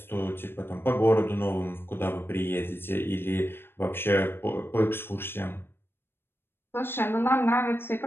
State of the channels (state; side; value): late; right; 0.11 ms